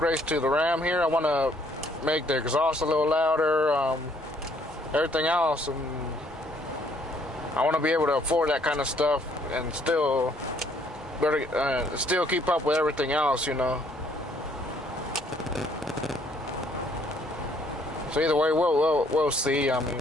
to the Ram here. I want to make the exhaust a little louder, everything else, and I want to be able to afford that kind of stuff and still keep up with everything else, you know. So either way, we'll see. I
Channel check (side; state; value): both; normal; correlation 0.64